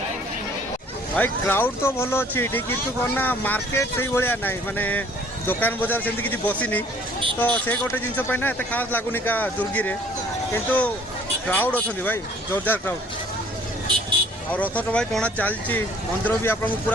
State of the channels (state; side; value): normal; both; correlation 0.56